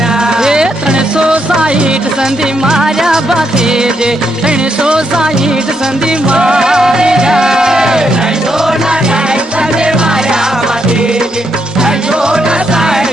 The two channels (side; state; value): both; normal; correlation 0.79